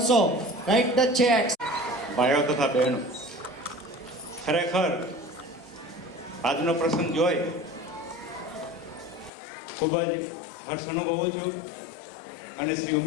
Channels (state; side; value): drops out; right; at 9.3 s